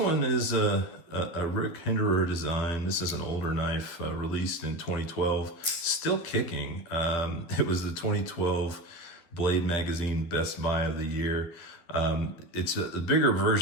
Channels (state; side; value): late; right; 12 ms